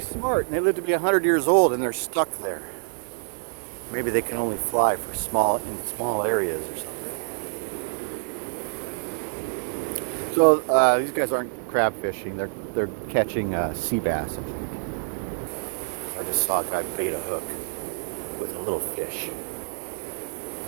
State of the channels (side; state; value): left; silent; digital silence